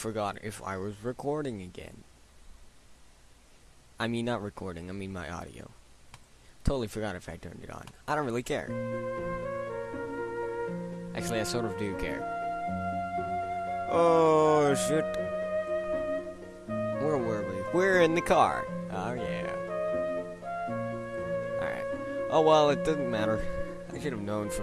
if I was recording again. I mean, not recording, I mean my audio. Totally forgot if I turned it on. I don't really care. Actually, I sort of do care. Oh, shit. Where were we? We're in the car. Oh, yeah. Alright. Oh, well, it doesn't matter. I should have known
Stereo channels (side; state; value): both; identical; correlation 1.00